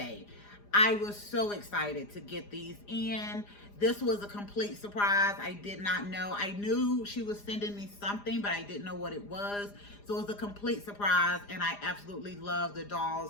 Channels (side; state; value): right; late; 4.9 ms